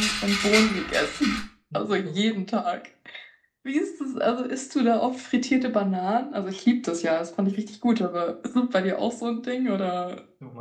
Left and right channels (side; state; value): both; identical; correlation 1.00